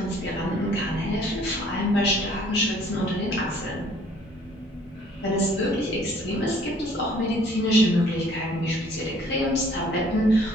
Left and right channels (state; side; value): normal; both; correlation 0.57